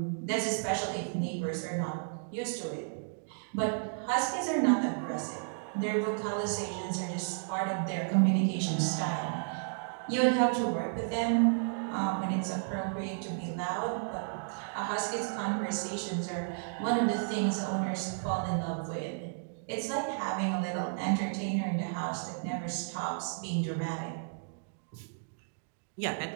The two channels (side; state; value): left; silent; digital silence